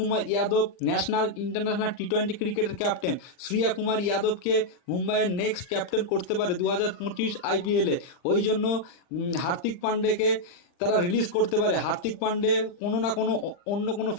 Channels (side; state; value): right; late; 40 ms